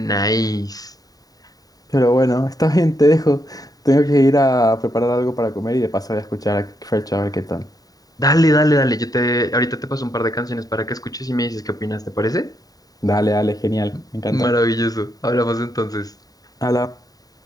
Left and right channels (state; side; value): late; right; 0.18 ms